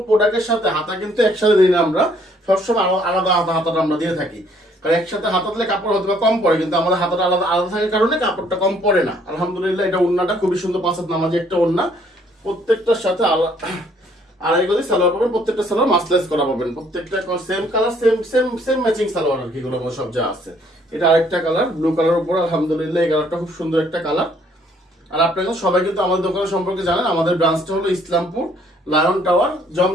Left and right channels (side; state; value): both; normal; correlation 0.64